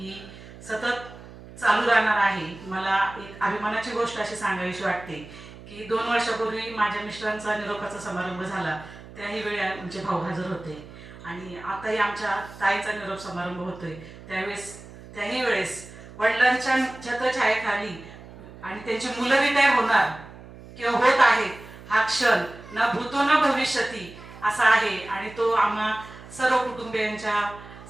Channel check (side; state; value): right; noise; hum, 17 dB below the sound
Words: सतत चालू राहणार आहे. मला एक अभिमानाची गोष्ट अशी सांगावीशी वाटते की 2 वर्षापूर्वी माझ्या मिस्टरांचा निरोपाचा समारंभ झाला. त्याही वेळी आमचे भाऊ हजर होते आणि आताही आमच्या ताईचा निरोप समारंभ होतोय. त्याही वेळेस वडिलांच्या छत्रछायेखाली आणि त्यांची मुलं रिटायर होणार किंवा होत आहेत हा क्षण न भूतो न भविष्यती असा आहे आणि तो आम्हा सर्व